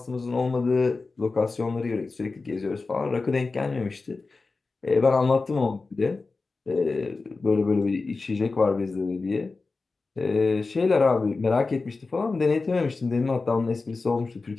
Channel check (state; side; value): quieter; right; 3.9 dB